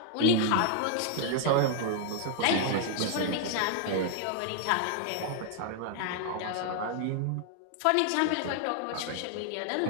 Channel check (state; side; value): different; both; correlation 0.00